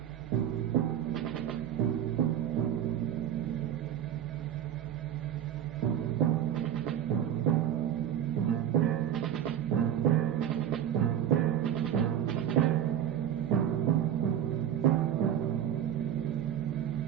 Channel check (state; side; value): quieter; left; 10.1 dB